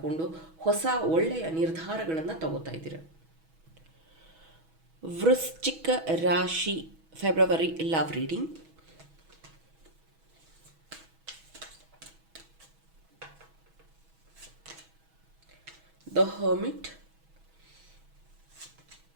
ಹೊಸ ಒಳ್ಳೆಯ ನಿರ್ಧಾರಗಳನ್ನು ತಗೋತಾ ಇದ್ದೀರ. ವೃಶ್ಚಿಕ ರಾಶಿ February love reading. The Hermit,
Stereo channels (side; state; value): left; late; 6.2 ms